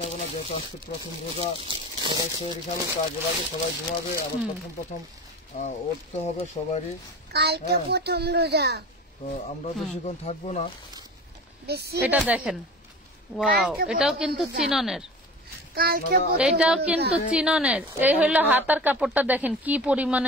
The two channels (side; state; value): both; normal; correlation 0.36